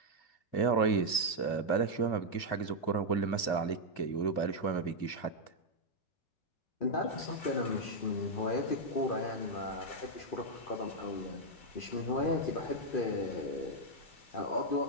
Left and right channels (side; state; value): right; late; 2.4 ms